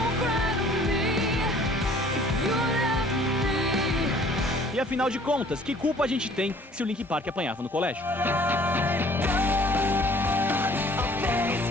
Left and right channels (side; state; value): both; normal; correlation 0.54